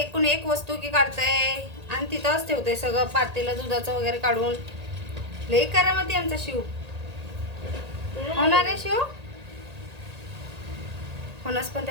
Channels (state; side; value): late; left; 1.8 ms